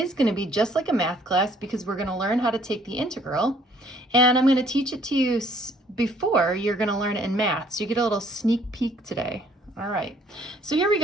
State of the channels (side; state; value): both; normal; correlation 0.61